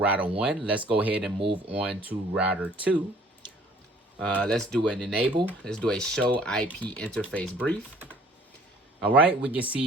1. Let's go ahead and move on to router 2. Let's do an enable. Let's do a show IP interface brief. All right, we can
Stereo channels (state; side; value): normal; both; correlation 0.55